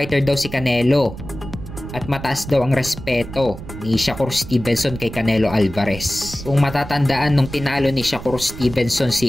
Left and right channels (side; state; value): right; noise; rumble, 12 dB below the sound